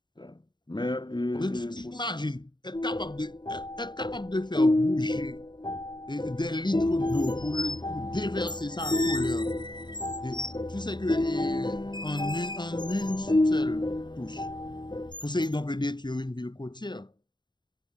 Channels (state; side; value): late; right; 0.22 ms